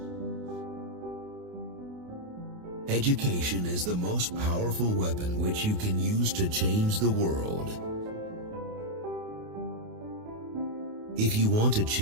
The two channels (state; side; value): late; left; 28 ms